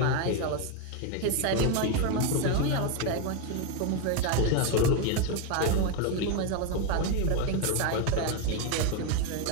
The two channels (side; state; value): both; different; correlation 0.02